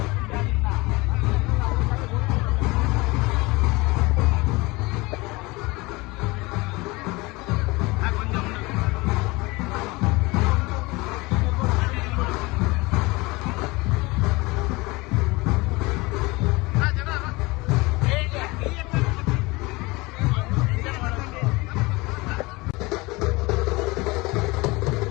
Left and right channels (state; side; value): quieter; right; 23.5 dB